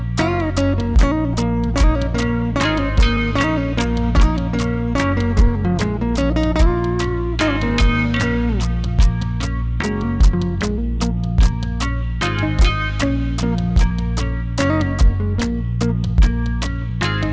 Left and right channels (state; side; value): identical; both; correlation 1.00